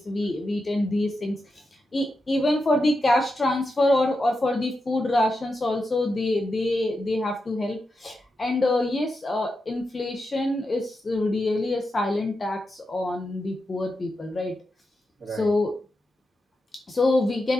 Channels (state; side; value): normal; both; correlation 0.88